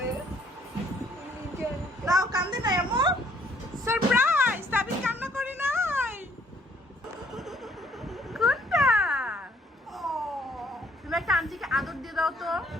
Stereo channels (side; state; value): both; normal; correlation 0.63